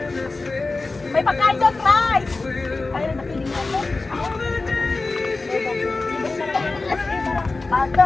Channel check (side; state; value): right; quieter; 3.5 dB